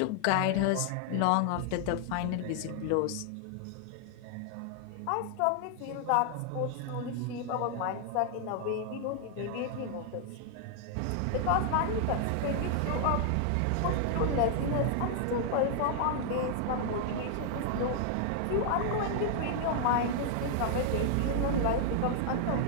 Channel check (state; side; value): different; both; correlation 0.00